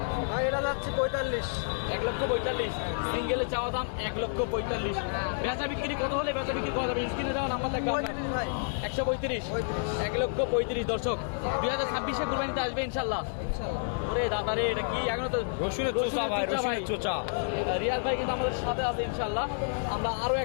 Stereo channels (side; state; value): right; silent; 58 dB below the other